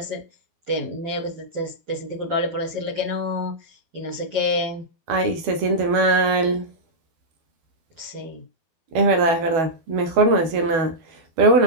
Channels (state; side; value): late; left; 12 ms